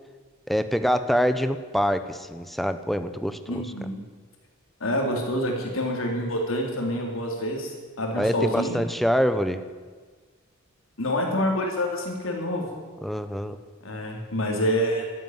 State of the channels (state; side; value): normal; both; correlation 0.51